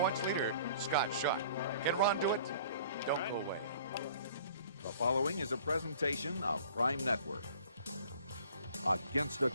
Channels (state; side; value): inverted; both; correlation -0.51